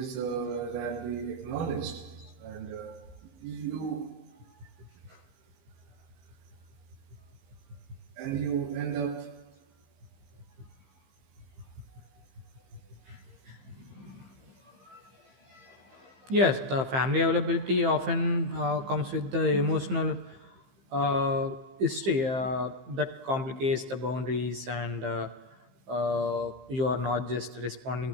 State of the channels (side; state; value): left; late; 15 ms